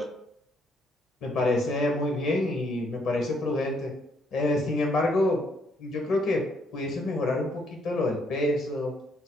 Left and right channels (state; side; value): normal; both; correlation 0.70